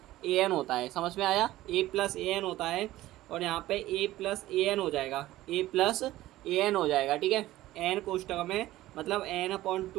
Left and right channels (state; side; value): quieter; left; 15.8 dB